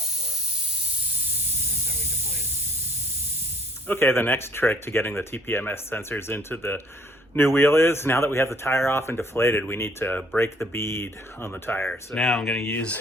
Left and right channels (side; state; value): both; normal; correlation 0.60